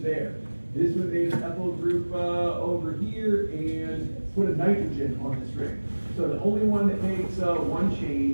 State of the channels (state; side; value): inverted; both; correlation -1.00